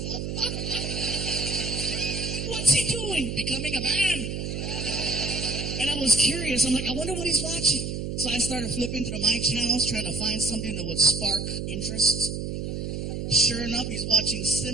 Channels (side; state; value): right; noise; hum, 4 dB below the sound